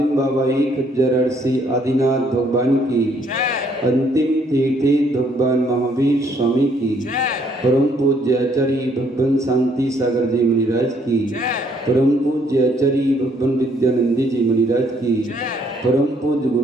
बाबा एक जरसी आदिनाथ भगवान की अंतिम तीर्थी भगवान महावीर स्वामी की परम पूज्य आचार्य भगवान शांति सागर जी मुनिराज की परम पूज्य आचार्य भगवान विद्यानंदी जी मुनिराज की परम पूज्य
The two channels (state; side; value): normal; both; correlation 0.67